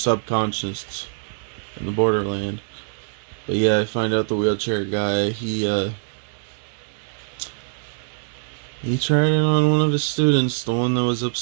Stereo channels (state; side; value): silent; left; digital silence